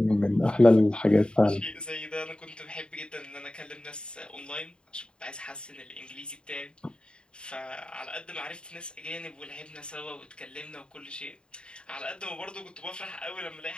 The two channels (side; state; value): right; late; 0.051 ms